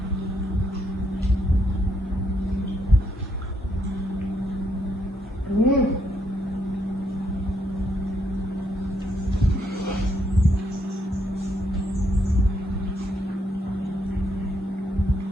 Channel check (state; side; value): normal; both; correlation 0.75